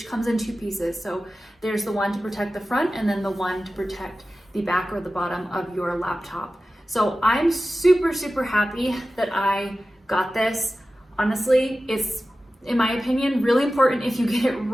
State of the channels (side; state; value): both; normal; correlation 0.95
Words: comes in two pieces. So there's the one to protect the front and then the one to protect the back or the bottom of your laptop. So I'm super, super happy that I got this. Honestly, it's, in my opinion, really important if you get it